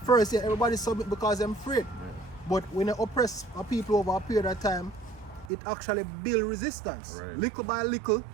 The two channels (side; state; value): left; drops out; at 5.5 s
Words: first, yeah, everybody submit because they're afraid. But when you oppress a people over a period of time, it actually build resistance. Right. Little by little,